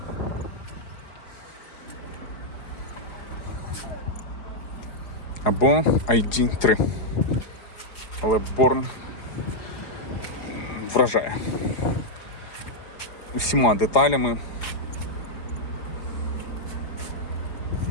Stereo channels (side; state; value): right; late; 4.9 ms